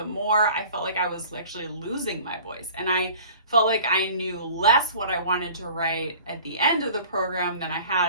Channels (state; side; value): inverted; both; correlation -0.46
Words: more I felt like I was actually losing my voice. And I felt like I knew less what I wanted to write at the end of the program than I